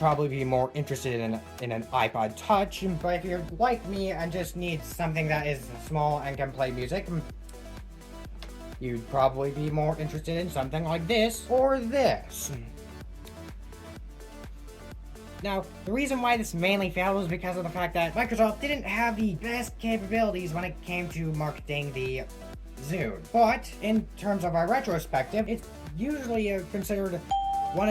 be more interested in an iPod Touch. But if you're like me and just need something that is small and can play music, you'd probably be more interested in something like this or this. Now, the reason why this mainly failed was because of the fact that Microsoft didn't have the best capabilities when it came to marketing the Zune. But in terms of our retrospective, it's usually considered one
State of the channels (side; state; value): both; identical; correlation 1.00